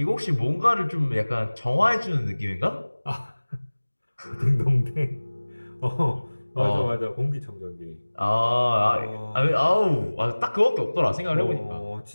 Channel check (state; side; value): inverted; both; correlation -1.00